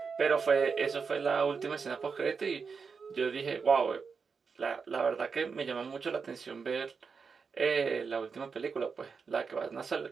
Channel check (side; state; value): left; quieter; 5.4 dB